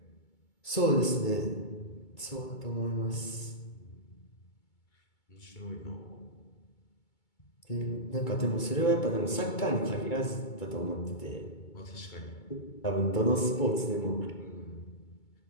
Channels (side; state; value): right; late; 2.2 ms